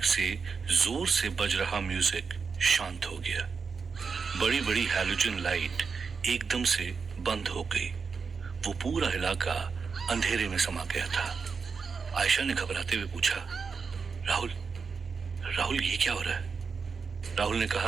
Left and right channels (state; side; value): quieter; left; 5.3 dB